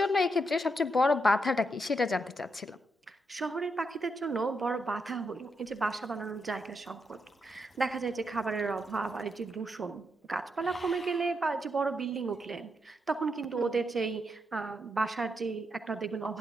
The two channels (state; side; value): normal; both; correlation 0.81